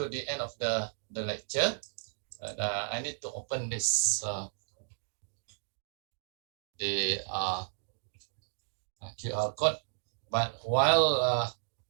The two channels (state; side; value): silent; left; digital silence